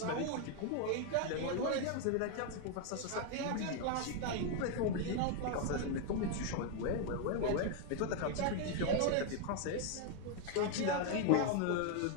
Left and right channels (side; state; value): both; different; correlation 0.01